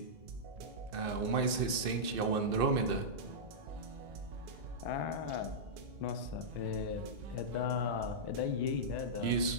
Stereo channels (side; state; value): left; late; 2.6 ms